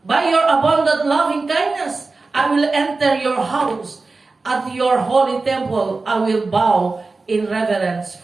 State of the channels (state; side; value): quieter; left; 3.8 dB